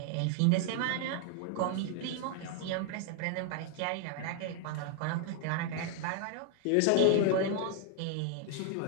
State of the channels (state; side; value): different; both; correlation 0.00